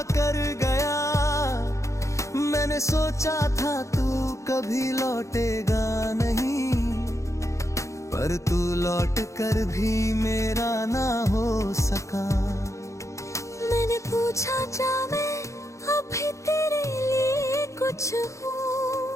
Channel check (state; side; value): late; right; 0.15 ms